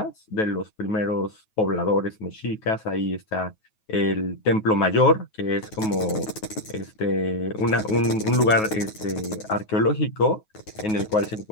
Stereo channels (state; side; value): late; right; 9.3 ms